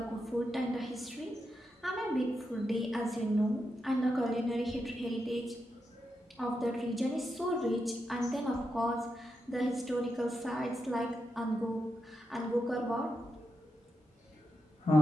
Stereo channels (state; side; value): normal; both; correlation 0.86